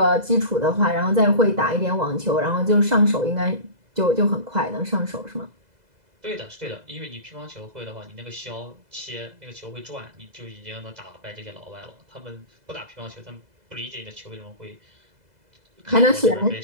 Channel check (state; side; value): late; left; 2.0 ms